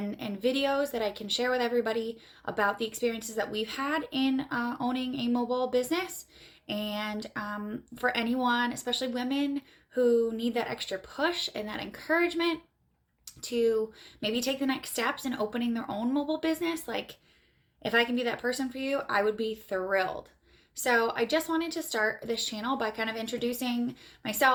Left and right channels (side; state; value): both; identical; correlation 1.00